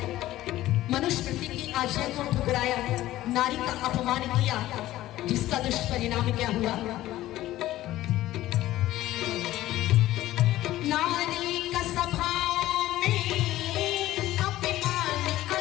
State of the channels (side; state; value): right; quieter; 15.1 dB